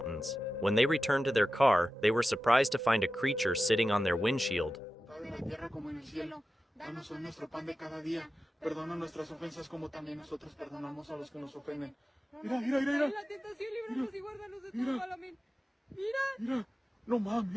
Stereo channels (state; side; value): normal; both; correlation 0.93